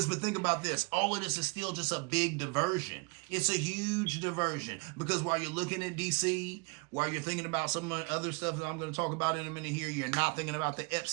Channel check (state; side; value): quieter; left; 31.0 dB